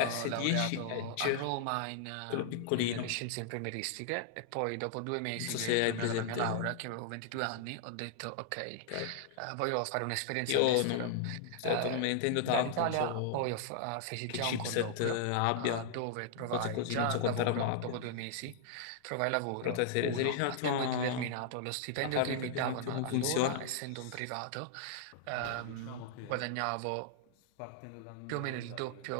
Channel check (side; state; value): both; different; correlation -0.01